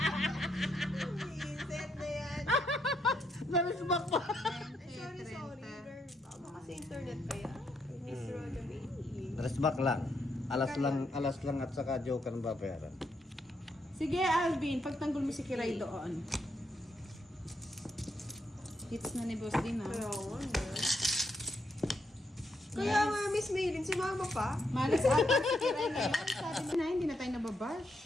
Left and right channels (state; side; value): normal; both; correlation 0.77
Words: Set na yan. Narisbak pa! Ay, sorry, girl. Baka sa internet kaya. Miss Roda Baby. Narisbak lang. Alas lang at saka joker ng babayaran. Sige, Alvin, pagtanggol mo si Kiray doon. Hits na ni Boss din, ha? Kaya nga, Kaya nga, Miss Maylin, si Mama pa. Malas ata si Kiray na yan. Sabi na, hindi na tayo